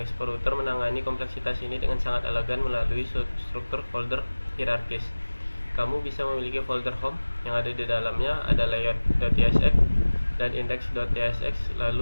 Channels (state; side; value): inverted; both; correlation -1.00